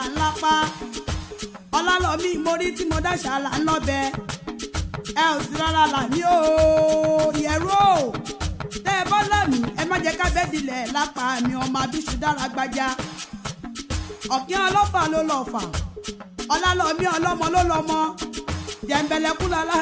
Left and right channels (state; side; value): identical; both; correlation 1.00